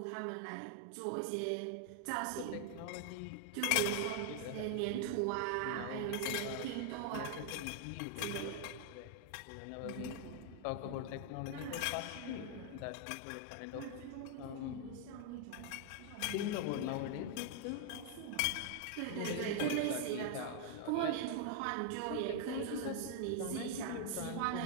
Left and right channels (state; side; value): different; both; correlation 0.00